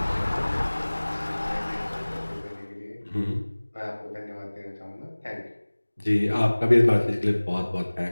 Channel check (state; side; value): inverted; both; correlation -1.00